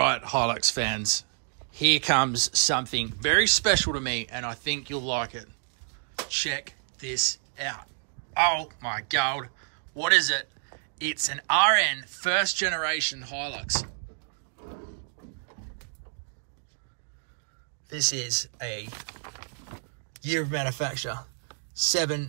Hilux fans, here comes something very special to me, and I think you'll like it. Check this out. Oh my god, what is it? It's an RN first generation Hilux. This is a year of manufacture,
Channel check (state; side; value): silent; left; digital silence